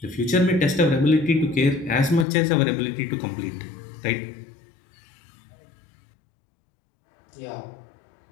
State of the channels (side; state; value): right; drops out; at 2.2 s